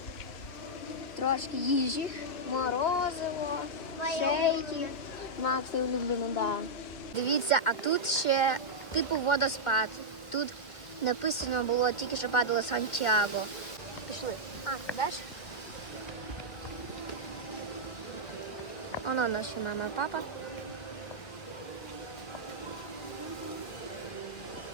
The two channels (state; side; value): late; right; 2.1 ms